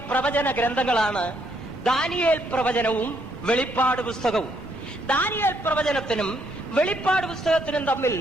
പ്രവചന ഗ്രന്ഥങ്ങളാണ് ദാനിയേൽ പ്രവചനവും വെളിപ്പാട് പുസ്തകവും. ദാനിയേൽ പ്രവചനത്തിനും വെളിപ്പാട് പുസ്തകത്തിനും തമ്മിൽ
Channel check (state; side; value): normal; both; correlation 0.72